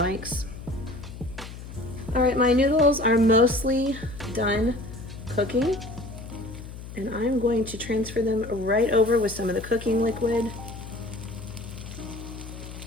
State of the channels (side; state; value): left; noise; hum, 12 dB below the sound